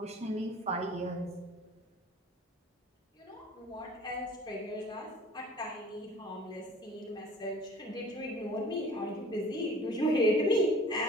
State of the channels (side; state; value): both; normal; correlation 0.46